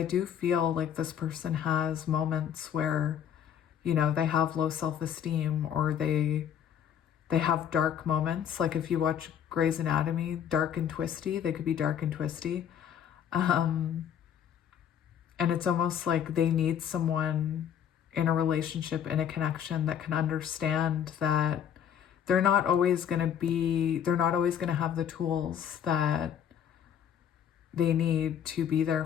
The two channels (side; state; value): right; quieter; 9.0 dB